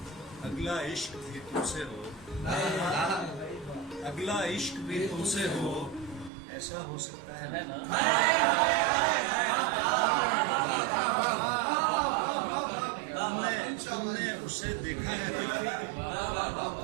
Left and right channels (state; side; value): drops out; left; at 6.3 s